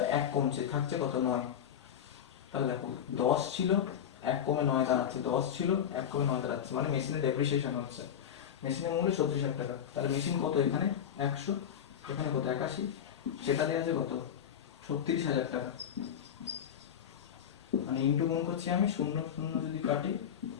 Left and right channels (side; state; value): right; quieter; 9.1 dB